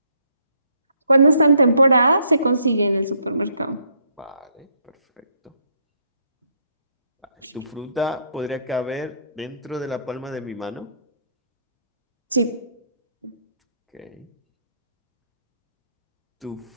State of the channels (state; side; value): inverted; both; correlation -0.70